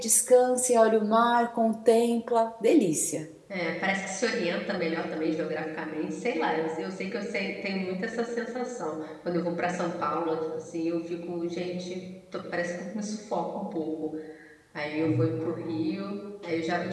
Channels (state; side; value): identical; both; correlation 1.00